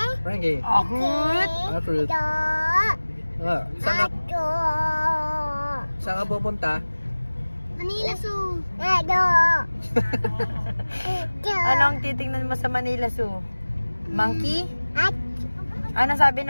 Ranking! Fruit! Fruit! Saan ka pupunta? Manila Zoo. Anong titingnan mo sa Manila Zoo? Monkey? Ano sabi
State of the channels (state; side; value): inverted; both; correlation -1.00